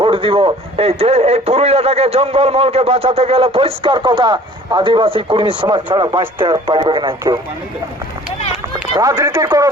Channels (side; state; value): both; normal; correlation 0.50